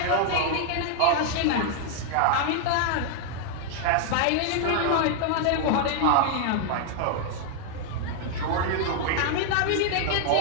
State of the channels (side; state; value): both; different; correlation 0.00